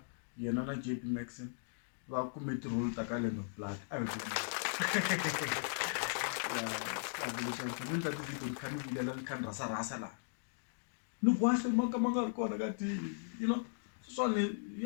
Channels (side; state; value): right; silent; digital silence